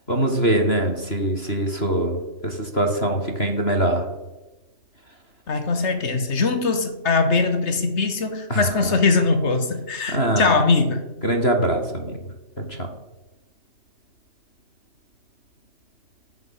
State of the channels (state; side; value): late; right; 3.3 ms